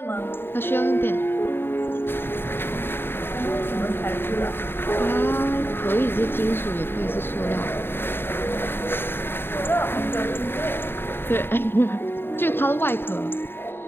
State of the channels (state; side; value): late; right; 0.11 ms